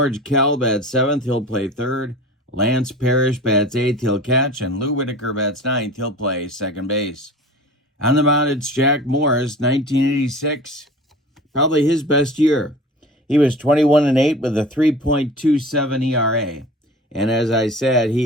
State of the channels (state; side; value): normal; both; correlation 0.39